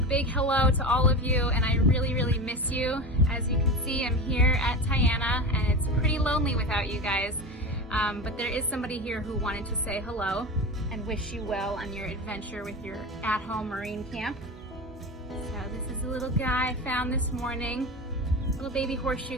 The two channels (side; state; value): both; normal; correlation 0.26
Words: hello to all of you, and I really miss you. As you can see, I'm here at Tiana and it's pretty lonely without you guys, but there is somebody here who wanted to say hello and wish you well on your adventure with your at-home marine camp. So this is a little guy I found this morning, little baby